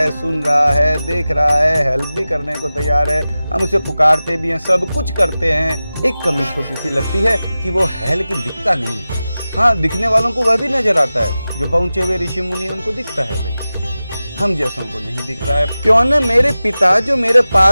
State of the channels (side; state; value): both; inverted; correlation -0.95